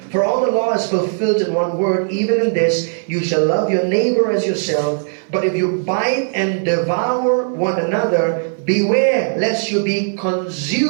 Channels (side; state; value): left; silent; 57 dB below the other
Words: For all the law is fulfilled in one word, even in this, you shall love your neighbor as yourself. But if you bite and devour one another, beware lest you be